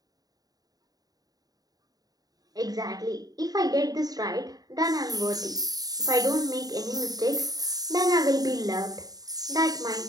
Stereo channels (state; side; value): late; left; 0.18 ms